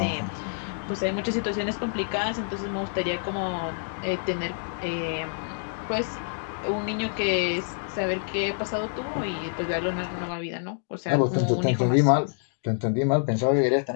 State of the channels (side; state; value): right; silent; digital silence